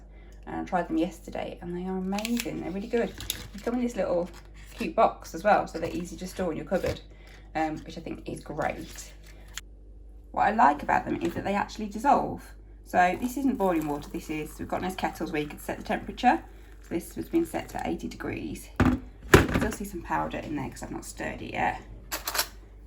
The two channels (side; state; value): both; identical; correlation 1.00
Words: and I tried them yesterday and they are amazing. They're really good. They come in this little cute box as well, so they're easy to store in your cupboard, which I think is great. what I like about them is that they actually dissolve. So this isn't boiling water, we've got nice kettles where you can set the temperature. So this has been set to 80 degrees. You can still see some powder in there because I've not stirred it yet.